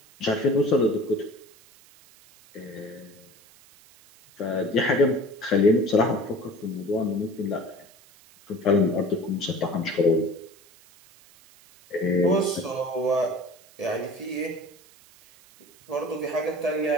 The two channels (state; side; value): noise; right; hiss, 26 dB below the sound